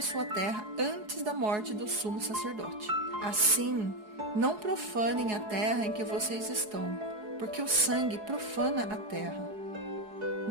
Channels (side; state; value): left; late; 4.7 ms